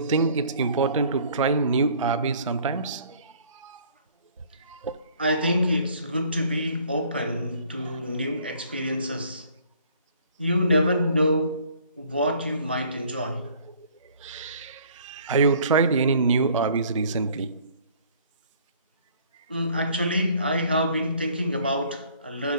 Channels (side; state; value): both; inverted; correlation -0.57